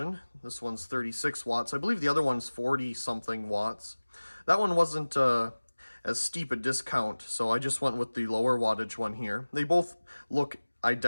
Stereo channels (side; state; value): both; inverted; correlation -1.00